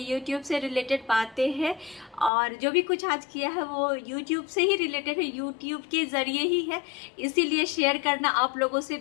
यूट्यूब से रिलेटेड बातें हैं और जो भी कुछ आज किया है वो यूट्यूब से ही रिलेटेड है, यूट्यूब के ज़रिए ही है। इसीलिए शेयर करना आप लोगों से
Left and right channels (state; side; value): drops out; right; at 2.3 s